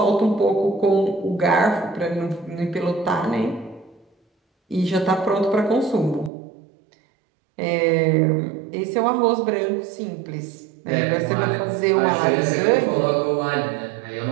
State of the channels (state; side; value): drops out; left; at 6.3 s